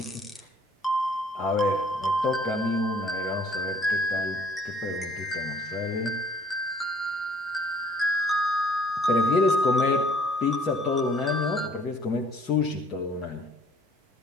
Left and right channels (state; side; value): normal; both; correlation 0.57